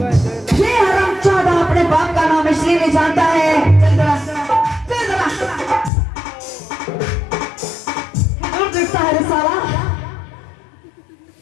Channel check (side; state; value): right; drops out; at 5.9 s